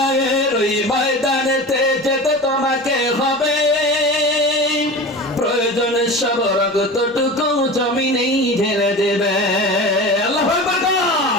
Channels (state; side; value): normal; both; correlation 0.32